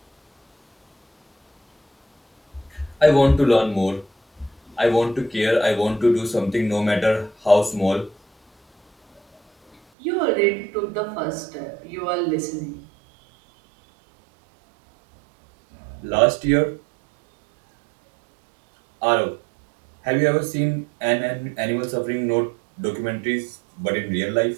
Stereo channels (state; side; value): drops out; left; at 9.8 s